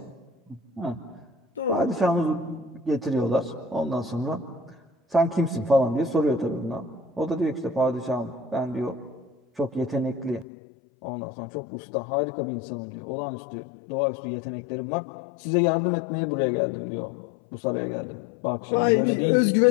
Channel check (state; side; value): drops out; right; at 10.5 s